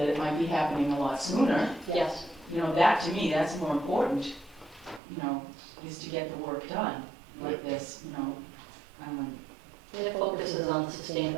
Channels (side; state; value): left; drops out; at 5.0 s